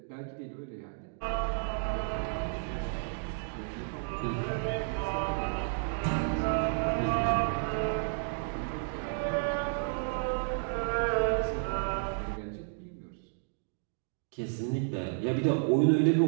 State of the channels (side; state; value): left; silent; digital silence